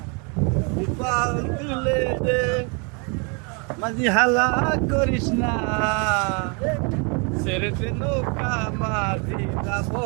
পাল তুলে দে মাঝি, হালা করিস না, ছেড়ে দে নৌকা মাঝি যাব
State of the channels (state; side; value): quieter; left; 34.3 dB